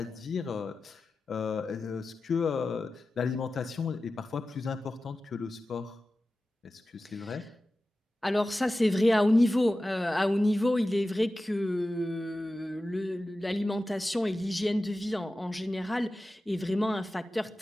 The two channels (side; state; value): both; normal; correlation 0.94